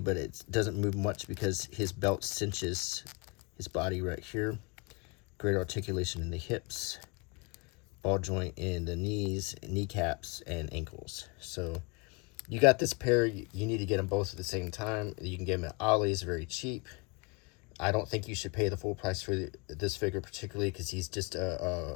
it doesn't move much because his belt cinches his body right here. Great articulation in the hips, ball joint in the knees, kneecaps, and ankles. So you got this pair. You need to get them both at the same time. You can get them at Ollie's, very cheap. I don't think you should pay the full price for this figure, particularly because he's just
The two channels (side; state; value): right; quieter; 29.5 dB